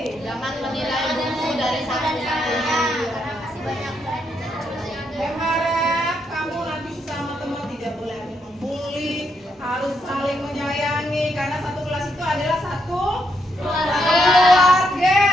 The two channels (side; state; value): both; normal; correlation 0.78